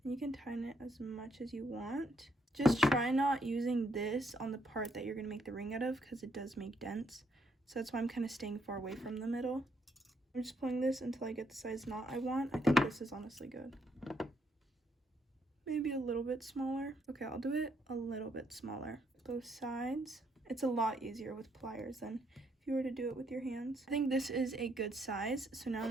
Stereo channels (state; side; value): normal; both; correlation 0.73